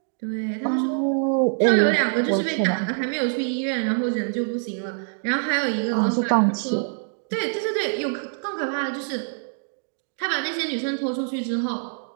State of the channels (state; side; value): silent; left; 62 dB below the other